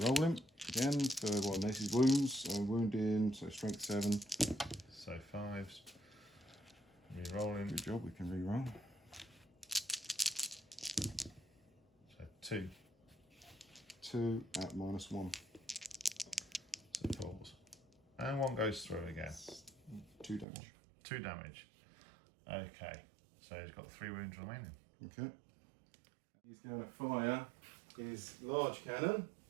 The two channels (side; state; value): left; drops out; at 20.5 s